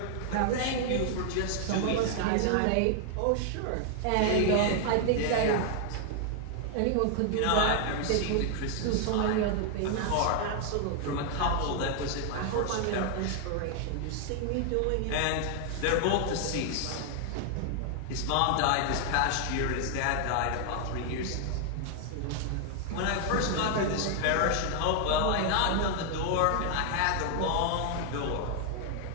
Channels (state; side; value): different; both; correlation 0.00